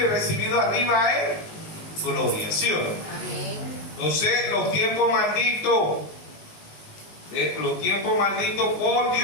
y recibido arriba en gloria, ¿sí o no? Amén. Entonces, los tiempos malditos Los tiempos malditos por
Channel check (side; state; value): right; late; 19 ms